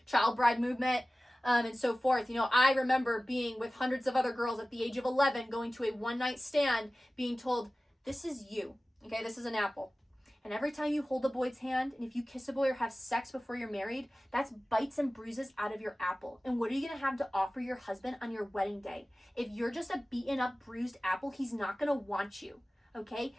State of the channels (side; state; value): both; normal; correlation 0.97